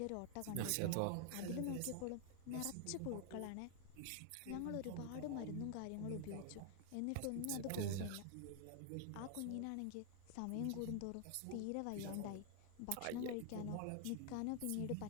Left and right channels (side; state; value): both; different; correlation 0.00